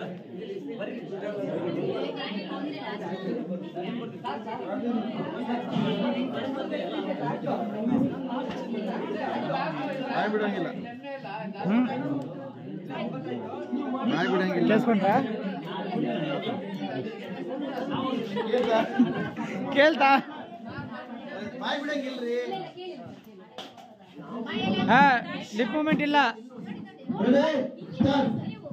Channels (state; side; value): identical; both; correlation 1.00